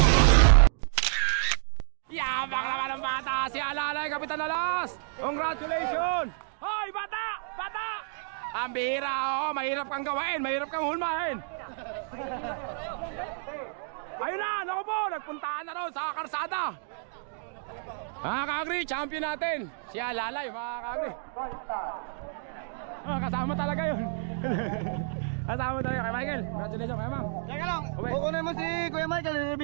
Yabang naman ang bata, si Alalay, Kapitan Alas. Congratulations. Hoy bata, bata. Ang bihira, oh, mahirap kang gawain, mahirap kang hulmahin. Ayun na, naku po, nagpuntaan na raw sa karsada. Mga kakri, champion natin si Alalay, mga kakri. Kasama talaga yun. Kasama talaga kay Michael. Congratulations kay Mang. Teka lang, kukunin mo si Kuya Michael,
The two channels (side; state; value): left; silent; digital silence